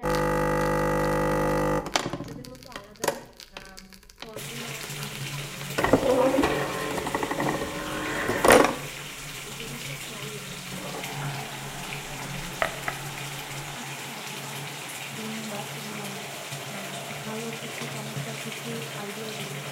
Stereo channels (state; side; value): identical; both; correlation 1.00